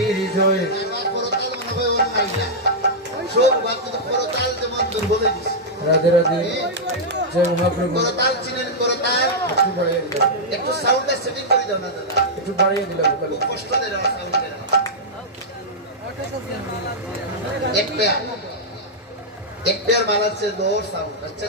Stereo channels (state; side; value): normal; both; correlation -0.08